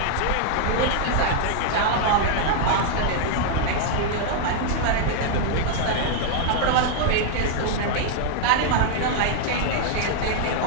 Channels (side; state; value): both; different; correlation 0.00